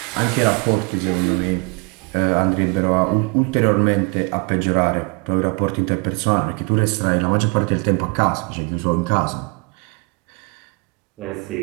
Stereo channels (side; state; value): left; quieter; 30.6 dB